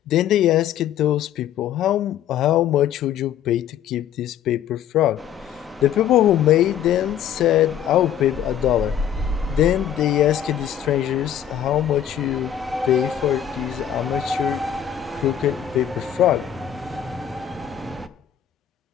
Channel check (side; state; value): right; quieter; 9.9 dB